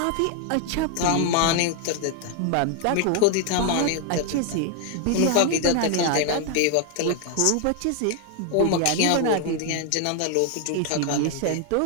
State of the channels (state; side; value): different; both; correlation 0.00